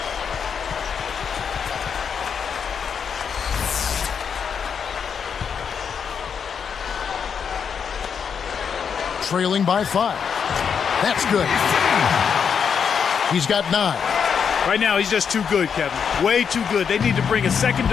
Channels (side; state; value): right; quieter; 6.9 dB